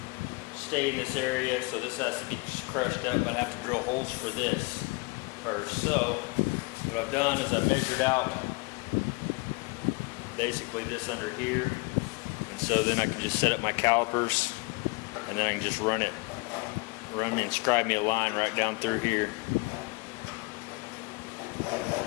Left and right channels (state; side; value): quieter; right; 27.5 dB